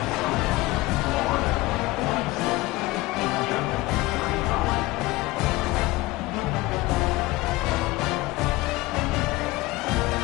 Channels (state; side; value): quieter; right; 20.2 dB